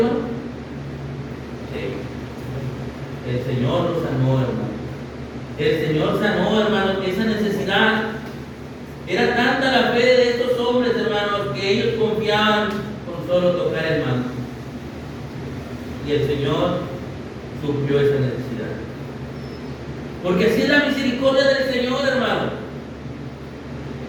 El Señor los sanó, hermano. El Señor sanó, hermano, esa necesidad. Era tanta la fe de estos hombres, hermanos, que ellos confiaban con solo tocar el manto. Y el Señor suplió esa necesidad. Porque así es la misericordia del Señor, hermano.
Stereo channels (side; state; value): both; identical; correlation 1.00